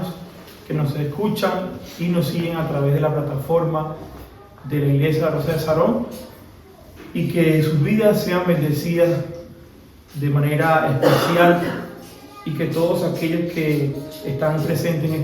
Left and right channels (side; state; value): both; identical; correlation 1.00